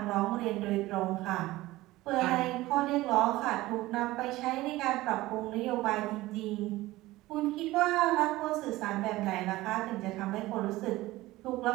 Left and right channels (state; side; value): quieter; left; 18.1 dB